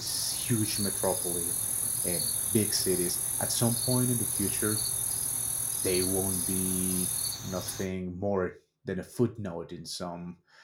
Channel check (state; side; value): identical; both; correlation 1.00